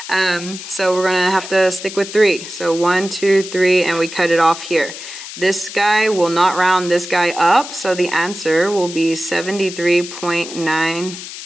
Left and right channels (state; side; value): noise; left; hiss, 11 dB below the sound